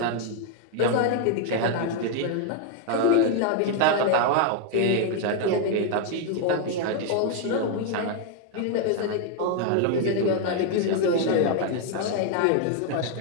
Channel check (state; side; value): different; both; correlation 0.00